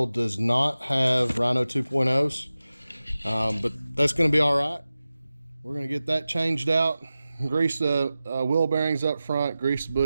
does not have Rhino 2.0s, but that's going to be all right. We're going to get that changed out, grease the wheel bearings up front, grease the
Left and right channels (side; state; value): both; inverted; correlation -0.95